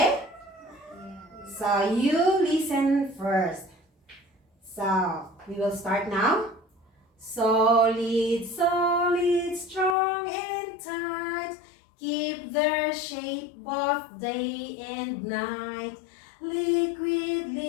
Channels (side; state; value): right; drops out; at 10.0 s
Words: So you listen first. So we will start now. Solid, solid, strong and tight, keep their shape both day and night. Liquid,